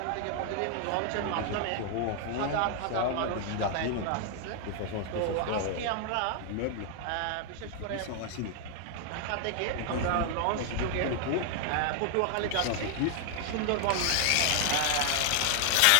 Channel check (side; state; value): both; different; correlation 0.00